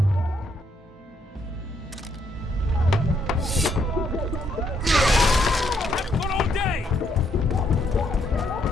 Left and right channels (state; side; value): normal; both; correlation 0.73